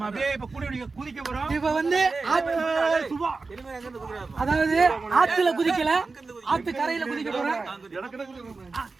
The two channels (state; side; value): quieter; left; 4.0 dB